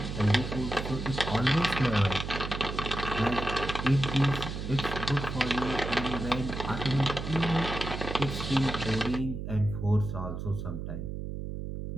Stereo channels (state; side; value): noise; right; hum, 6 dB below the sound